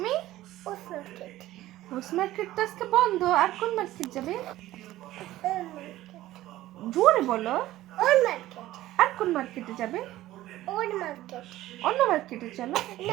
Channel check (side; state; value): left; quieter; 15.4 dB